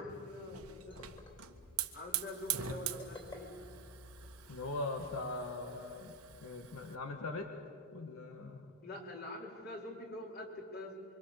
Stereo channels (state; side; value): normal; both; correlation 0.06